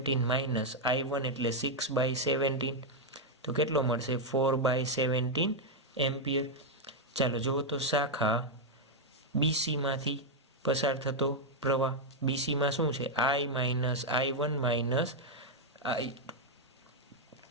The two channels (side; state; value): both; normal; correlation -0.01